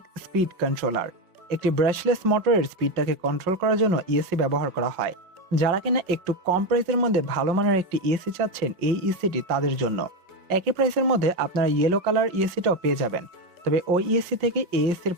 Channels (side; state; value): left; late; 5.6 ms